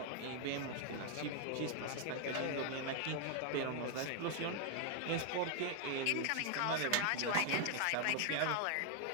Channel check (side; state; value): both; different; correlation 0.00